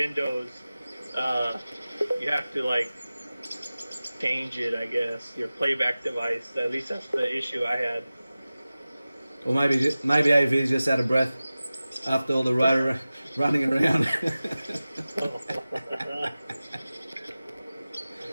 You have to like change it, I guess. Your playback device. At least that's the issue I had. Or maybe AV is just out of breath after all the running around.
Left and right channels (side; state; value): both; inverted; correlation -0.97